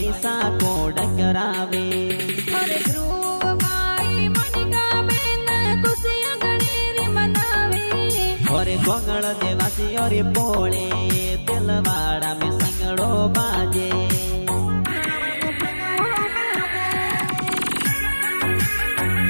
सा कोड करावे। और ध्रुव भाई मनिका बेन खुशियां गणेरी मनावे। और गोंगल देवासी और पोले दिलवाड़ा में संगड़ो बाजे।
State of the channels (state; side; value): inverted; both; correlation -1.00